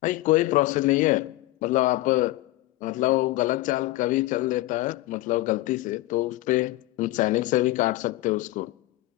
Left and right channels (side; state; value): right; quieter; 18.1 dB